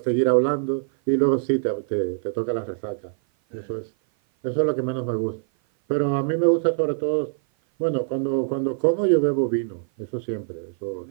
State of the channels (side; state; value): left; silent; 56 dB below the other